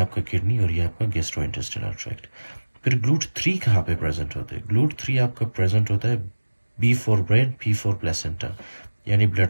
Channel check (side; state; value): both; inverted; correlation -1.00